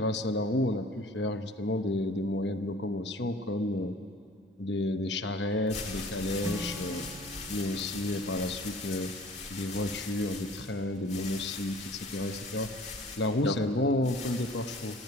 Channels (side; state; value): both; normal; correlation 0.49